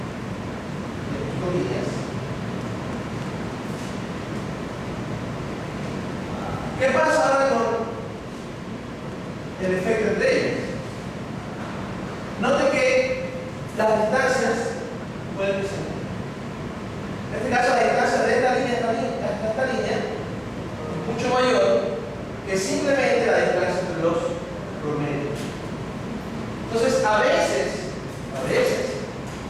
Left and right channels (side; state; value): both; identical; correlation 1.00